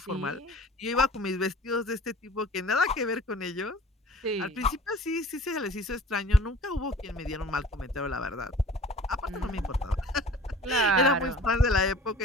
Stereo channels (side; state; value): both; normal; correlation 0.46